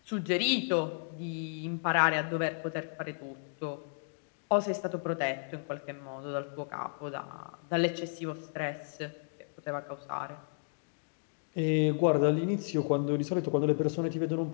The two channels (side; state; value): right; silent; digital silence